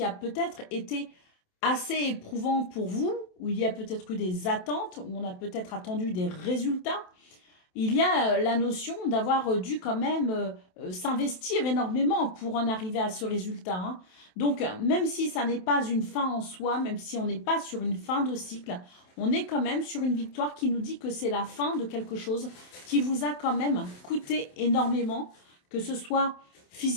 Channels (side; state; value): right; late; 27 ms